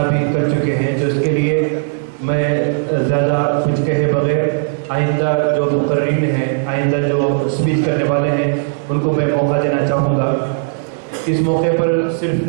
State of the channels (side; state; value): left; silent; digital silence